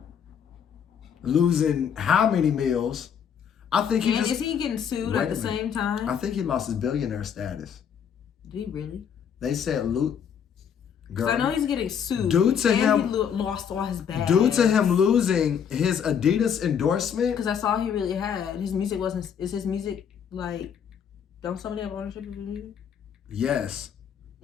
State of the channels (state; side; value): quieter; right; 7.8 dB